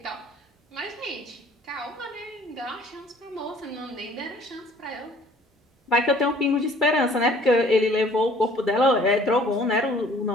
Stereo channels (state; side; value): normal; both; correlation 0.55